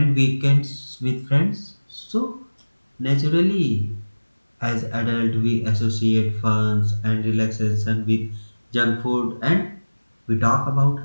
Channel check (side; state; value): both; inverted; correlation -1.00